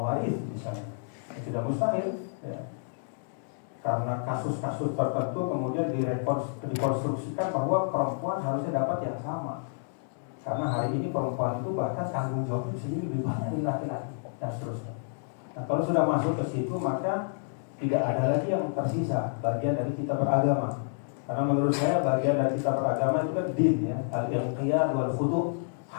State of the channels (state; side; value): silent; right; digital silence